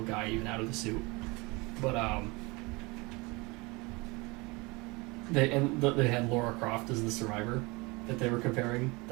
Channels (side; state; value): left; quieter; 25.6 dB